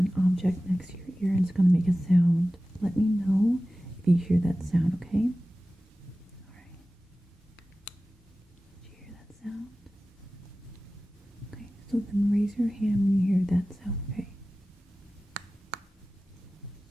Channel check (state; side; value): normal; both; correlation 0.96